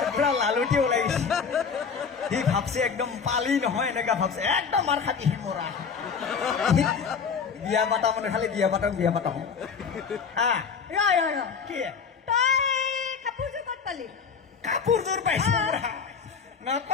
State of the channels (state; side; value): quieter; right; 6.0 dB